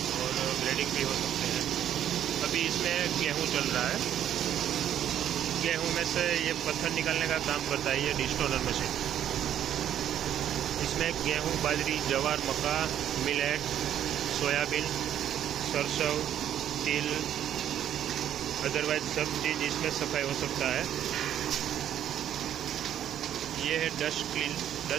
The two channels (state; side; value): quieter; left; 10.5 dB